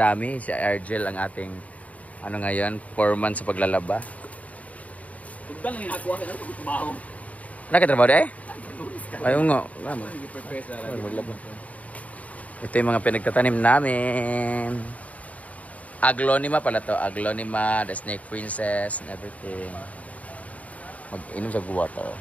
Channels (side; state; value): right; late; 0.069 ms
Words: Si Argel ang ating ngayon, 4 months sa paglalaba. Nakatrabaho eh? Ayaw nga. Ito yung mga pinagtatanim namin. Aglonema pala to. Aglonema, the snake princess, and everything. Mag-inom sa water.